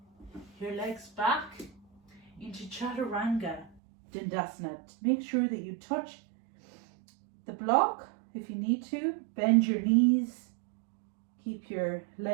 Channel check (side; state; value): left; drops out; at 3.8 s